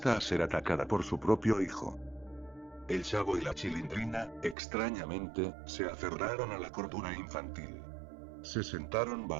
a ser atacada por su propio hijo. El Chavo y la Chilindrina, extrañamente, se aferraron a la cordura infantil. Se sentaron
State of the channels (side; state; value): left; drops out; at 4.5 s